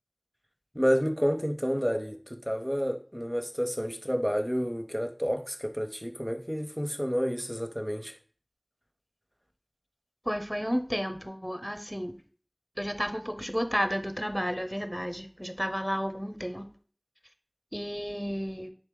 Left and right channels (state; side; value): identical; both; correlation 1.00